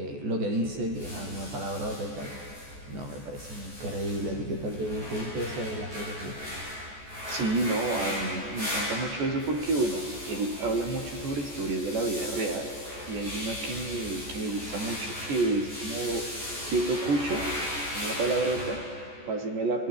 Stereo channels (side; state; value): left; late; 14 ms